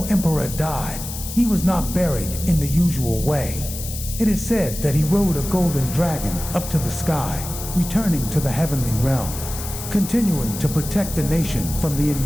Emperor died, he was not buried in the usual way. It is said that he rode a golden dragon up to the sky, returning to the heavenly realm, continuing to protect the nation from the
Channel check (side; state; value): left; noise; hiss, 9 dB below the sound